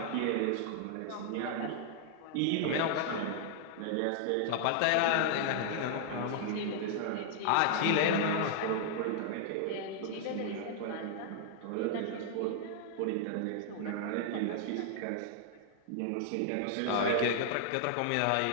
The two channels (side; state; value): both; different; correlation -0.01